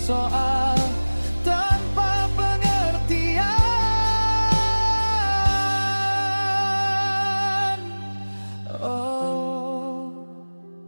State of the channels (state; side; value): inverted; both; correlation -1.00